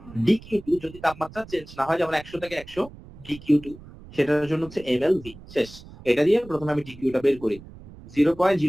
ডিকিউ2 যদি তাপমাত্রা চেঞ্জ না হয়, যেমন 100 থেকে 100 ডিকিউ2, সেটার জন্য হচ্ছে এমএলভি। শেষ। এটা দিয়ে প্রথমে আমি ডিকিউটা বের করি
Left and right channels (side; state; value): right; noise; rumble, 18 dB below the sound